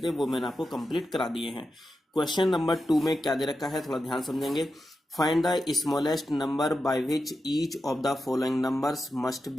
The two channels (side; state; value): both; normal; correlation 0.89